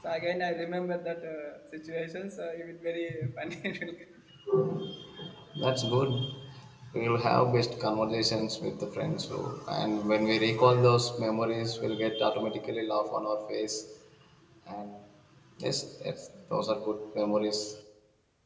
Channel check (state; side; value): identical; both; correlation 1.00